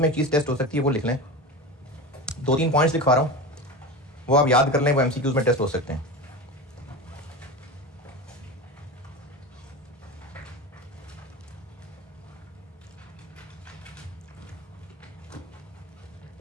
में चीज़ टेस्ट हो सकती है, वो लिख लें। 2-3 पॉइंट्स लिखवा रहा हूँ, वो आप याद कर लें, वो MCQs में टेस्ट हो सकते हैं।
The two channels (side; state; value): both; normal; correlation 0.26